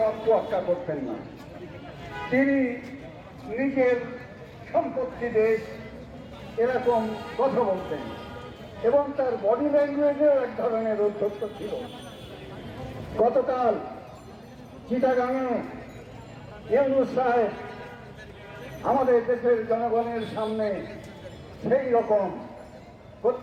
তোয়াক্কা করতেন না, তিনি নিজের সম্পত্তি দেশ এরকম কথা বলতেন এবং তার বডি ল্যাঙ্গুয়েজেও এক ধরনের উদ্ধত্ত ছিল। গতকাল চিটাগাঙে ইউনূস সাহেব আমাদের দেশের জনগণের সামনে সেই রকম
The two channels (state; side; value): identical; both; correlation 1.00